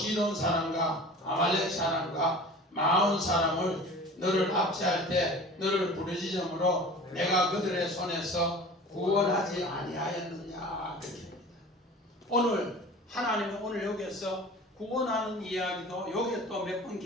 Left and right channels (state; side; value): normal; both; correlation 0.40